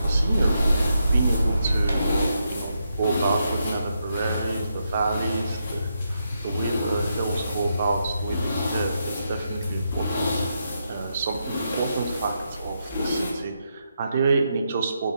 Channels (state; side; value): inverted; both; correlation -0.82